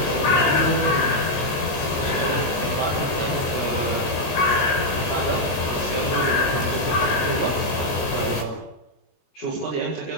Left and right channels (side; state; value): right; late; 17 ms